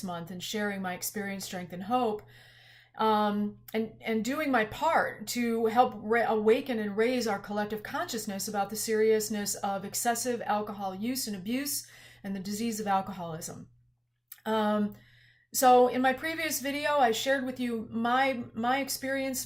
Month and sharing my experience, strength, and hope, and doing my part to help awaken and raise our collective consciousness about the seriousness of excessive alcohol use and abuse and the disease of alcoholism. So in my previous video, I shared with you my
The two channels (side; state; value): both; identical; correlation 1.00